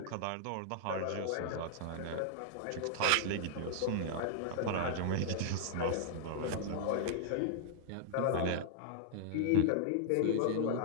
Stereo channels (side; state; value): both; different; correlation -0.01